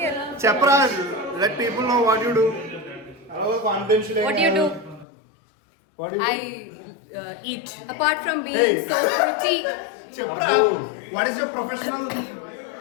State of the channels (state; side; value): drops out; right; at 5.1 s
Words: here. చెప్పరా, let people know what you do. Confidential. What do you do? What do you I eat. Apart from being so pretty. చెప్పరా, what is your professional?